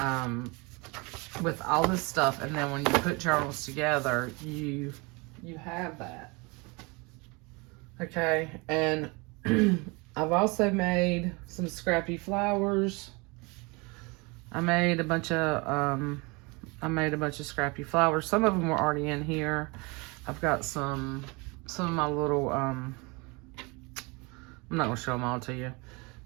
with all this stuff. And then when you put journals together, you have that. Okay, and I've also made some scrappy flowers. I made a bunch of scrappy flowers. Some of them were already in here. I've got some of my little, I'm not going to show them all to you,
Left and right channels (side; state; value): left; quieter; 27.7 dB